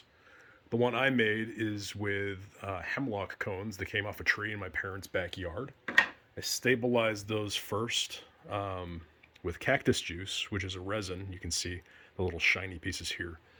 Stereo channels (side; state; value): both; identical; correlation 1.00